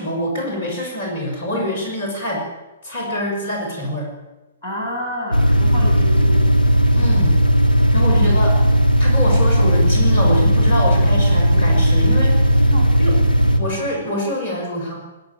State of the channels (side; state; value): both; inverted; correlation -0.84